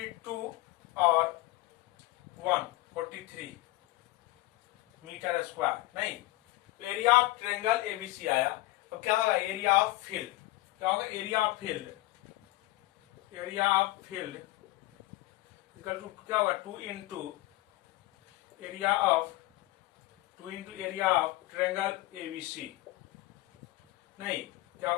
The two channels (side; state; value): right; quieter; 18.7 dB